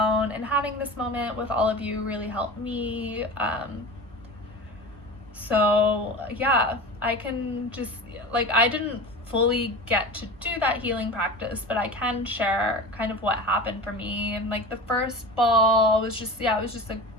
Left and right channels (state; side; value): normal; both; correlation 0.32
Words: and having this moment with all of you really helped me. So yeah, I can just, like, I didn't fully get to do that healing practice, but I can share kind of what happened for me. And like the first ball was just, yeah, it was